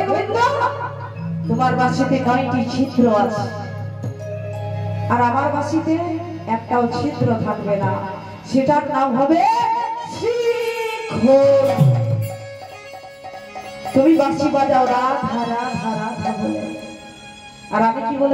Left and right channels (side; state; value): both; identical; correlation 1.00